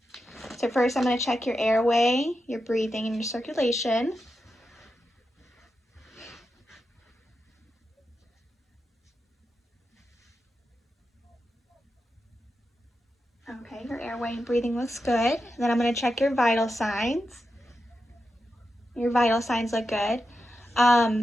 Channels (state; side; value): normal; both; correlation 0.88